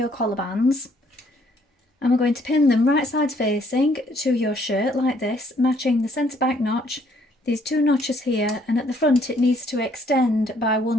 collar bands, and we're going to pin them right sides facing to your shirt like this, matching the centre back notch, these two notches here, and at the front it needs to extend by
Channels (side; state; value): both; normal; correlation 0.65